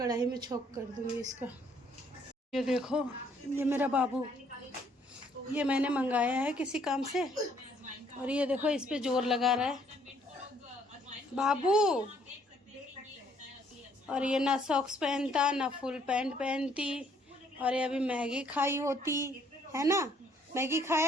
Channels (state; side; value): normal; both; correlation 0.65